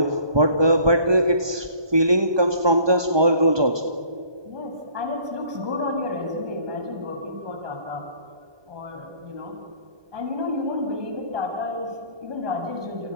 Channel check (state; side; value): late; left; 1.2 ms